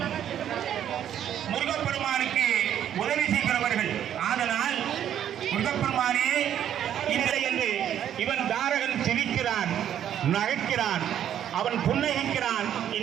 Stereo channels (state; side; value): quieter; left; 10.2 dB